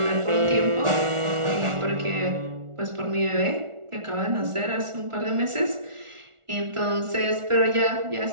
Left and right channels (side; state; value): left; late; 1.4 ms